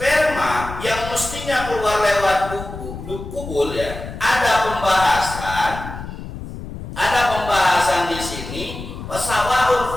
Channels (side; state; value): left; noise; rumble, 10 dB below the sound